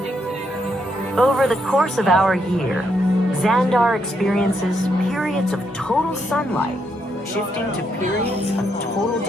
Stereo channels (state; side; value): normal; both; correlation 0.77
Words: Over the course of our year, Xandar experiences periods of total sunlight, shifting to periods of total